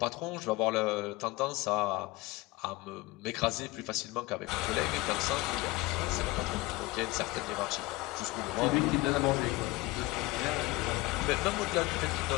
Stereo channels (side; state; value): right; quieter; 21.7 dB